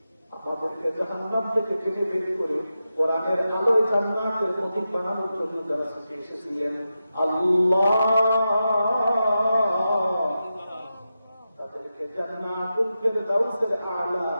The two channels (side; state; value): both; inverted; correlation -0.90